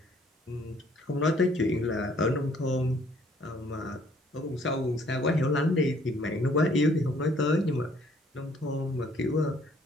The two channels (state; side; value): normal; both; correlation 0.62